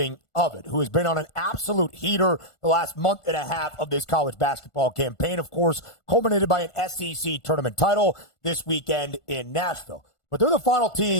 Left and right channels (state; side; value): late; right; 1.4 ms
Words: of it, who has been on an absolute heater the last month and a half of this college basketball campaign, of course, culminated by an SEC tournament title this weekend in Nashville. But they're the final